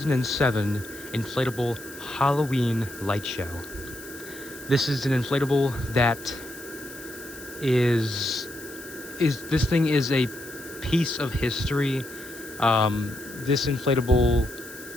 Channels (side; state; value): left; noise; hiss, 16 dB below the sound